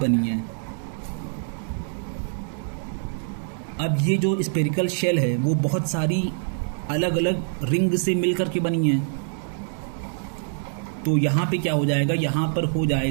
है। अब ये जो स्पेरिकल शेल है वो बहुत सारी अलग अलग रिंग से मिलकर के बनी है। तो यहाँ पे क्या हो जाएगा, यहाँ पर हो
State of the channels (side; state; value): left; silent; digital silence